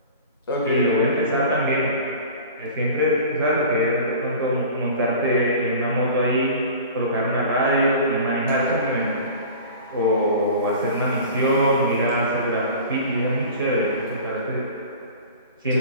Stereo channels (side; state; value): both; inverted; correlation -0.39